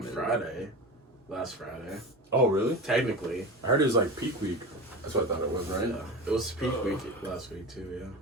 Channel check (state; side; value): normal; both; correlation 0.28